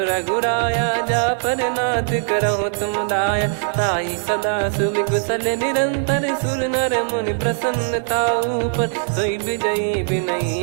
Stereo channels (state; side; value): silent; left; digital silence